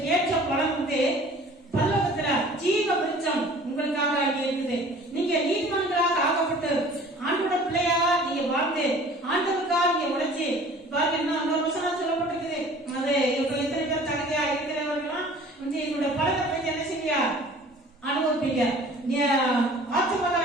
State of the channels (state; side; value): normal; both; correlation 0.48